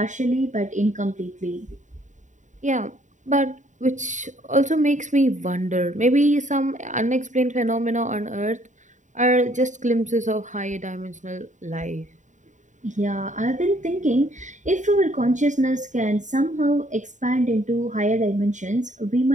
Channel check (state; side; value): late; left; 0.36 ms